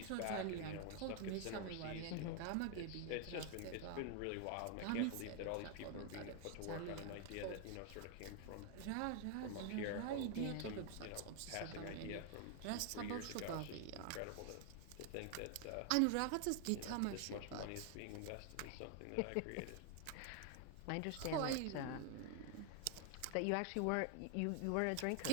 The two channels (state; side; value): different; both; correlation 0.00